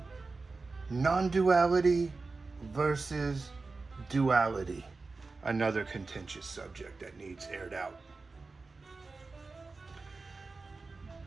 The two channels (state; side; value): quieter; left; 3.9 dB